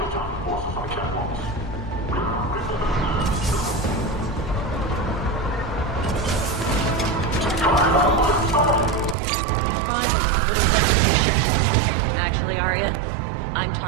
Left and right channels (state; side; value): drops out; left; at 9.2 s